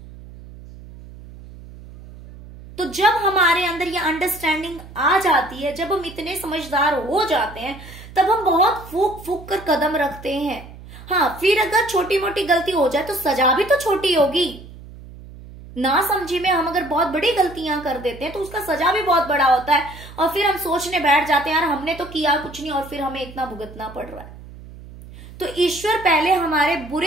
तो जब हमारे अंदर ये अंडरस्टैंडिंग आ जाती है, जब हम इतने समझदार हो जाते हैं, तब हम बहुत फूक फूक कर कदम रखते हैं। हाँ, फिर अगर छोटी मोटी गलती हो जाए तो सजा भी तो छोटी होगी ना। समझी में हम अगर बहुत बड़ी गलतियां कर देते हैं तो उसका सजा भी बहुत बड़ा होता है, और फिर हम सोचने बैठ जाते हैं यार हमने तो किया कुछ नहीं और फिर हमें इतना भुगतना पड़ रहा है। तो ईश्वर पहले हमारे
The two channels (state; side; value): noise; right; hum, 17 dB below the sound